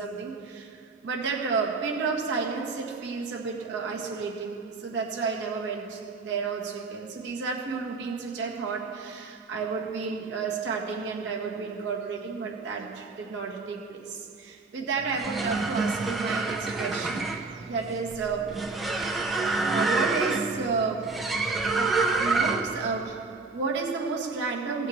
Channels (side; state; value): left; quieter; 3.9 dB